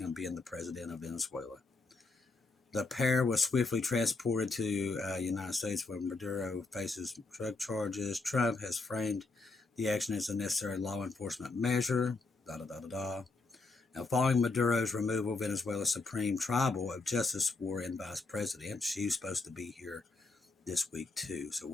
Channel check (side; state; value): right; quieter; 3.6 dB